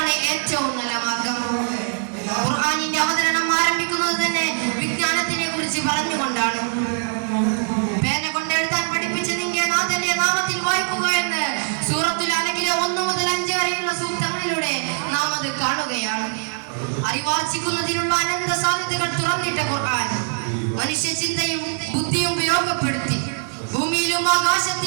ഏറ്റവും നല്ല മാർഗം. ഖുർആനിന്റെ അവതരണം ആരംഭിക്കുന്നത് തന്നെ വിജ്ഞാനത്തിനെ കുറിച്ച് പറഞ്ഞുകൊണ്ടാണ്. പേന കൊണ്ട് എഴുതാൻ പഠിപ്പിച്ച നിന്റെ നാഥന്റെ നാമത്തിൽ വായിക്കുക എന്ന് സൂറത്തുൽ അലഖിലെ 1 മുതൽ 5 വരെയുള്ള സൂക്തങ്ങളിലൂടെ നാം അത് കാണുകയാണ്. അറിവാർജിക്കുന്നതിനുള്ള അനന്ത സാധ്യതകൾ തുറന്നിട്ട ഖുർആൻ മനുഷ്യ ചിന്തയും ബുദ്ധിയും ഉപയോഗപ്പെടുത്തി ഭൂമിയിലും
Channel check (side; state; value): left; silent; 64 dB below the other